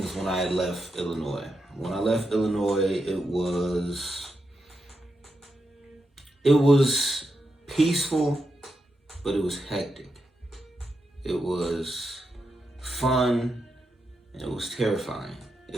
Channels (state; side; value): normal; both; correlation 0.86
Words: when I left Illinois. When I left Illinois, it was peaceful, but it was hectic. It was fun, and it was terrifying.